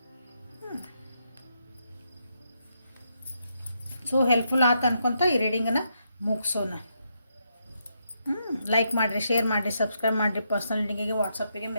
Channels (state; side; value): inverted; both; correlation -0.80